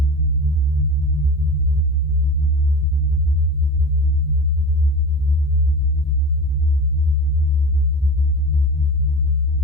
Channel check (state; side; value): noise; right; hum, 29 dB below the sound